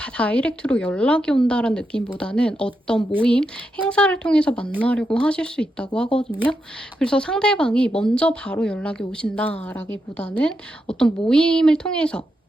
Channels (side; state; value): both; normal; correlation 0.85